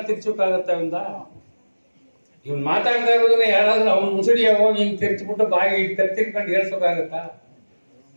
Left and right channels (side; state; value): both; inverted; correlation -1.00